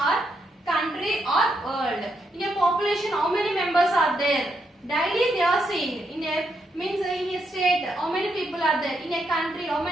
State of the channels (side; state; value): both; normal; correlation 0.79